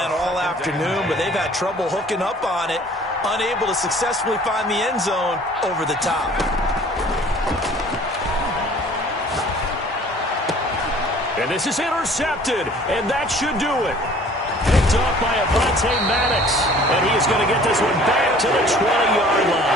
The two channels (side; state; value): both; normal; correlation 0.51